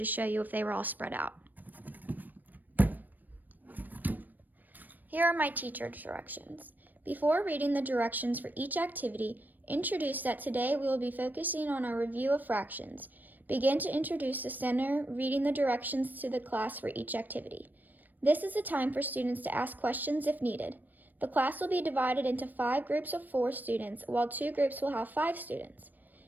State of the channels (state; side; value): late; left; 0.087 ms